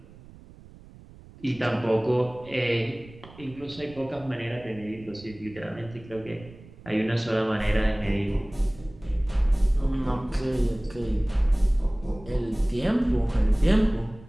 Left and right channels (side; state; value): right; noise; rumble, 21 dB below the sound